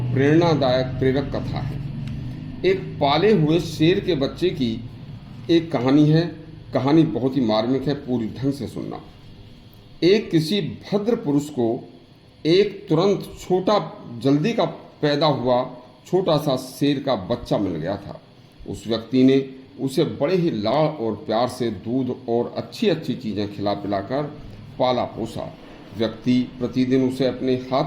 प्रेरणादायक प्रेरक कथा है। एक पाले हुए शेर के बच्चे की एक कहानी है। कहानी बहुत ही मार्मिक है, पूरी ढंग से सुनना। एक किसी भद्र पुरुष को एक तुरंत छोटा जल्दी का पैदा हुआ छोटा सा शेर का बच्चा मिल गया था। उस व्यक्ति ने उसे बड़े ही लाड़ और प्यार से दूध और अच्छी अच्छी चीज़ें खिला पिलाकर पाला पोसा। व्यक्ति प्रतिदिन उसे अपने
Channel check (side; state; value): both; identical; correlation 1.00